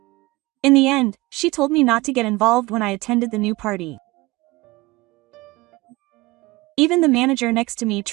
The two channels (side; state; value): left; quieter; 21.6 dB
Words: In the end, she told me not to get involved when I attended the new party. Even the manager next to me